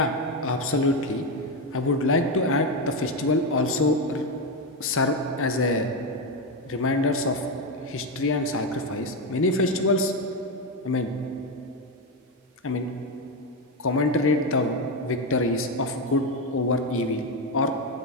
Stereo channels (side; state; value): both; normal; correlation 0.10